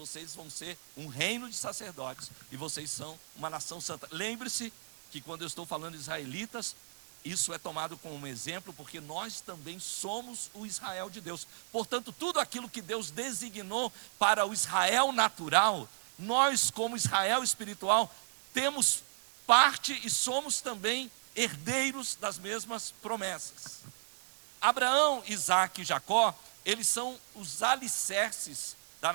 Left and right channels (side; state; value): left; silent; 55 dB below the other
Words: vão ser um reino de sacerdotes e vocês são uma nação santa. Lembre-se que quando eu estou falando de israelitas, isso é tomado como um exemplo, porque nós também somos o Israel de Deus. Portanto, tudo aquilo que Deus designou para o Israel natural, nós como Israel espiritual, temos parte e somos também herdeiros das mesmas promessas. Abraão, Isaac e Jacó, eles são os alicerces da